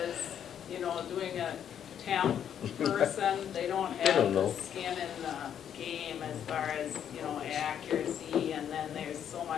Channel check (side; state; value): right; quieter; 9.2 dB